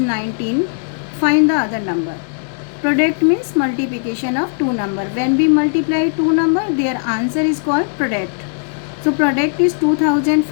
find the other number. Product means multiplication of two number. When we multiply two number, their answer is called product. So product is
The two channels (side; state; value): right; silent; digital silence